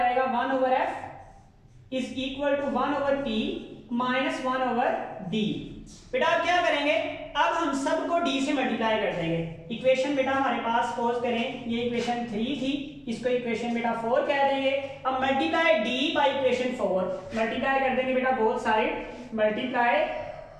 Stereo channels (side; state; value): both; identical; correlation 1.00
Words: 1 over F is equal to 1 over P minus 1 over D. बेटा अब क्या करेंगे, अब हम सबको d से मल्टीप्लाई कर देंगे। इक्वेशन बेटा हमारे पास सपोज करें ये इक्वेशन 3 थी, इसको इक्वेशन बेटा 4 कह देंगे। अब multiply d by equation 4, multiply कर देंगे बेटा both side, multiply